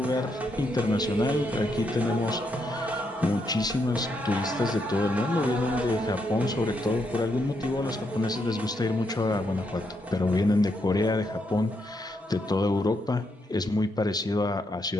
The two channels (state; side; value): normal; both; correlation 0.79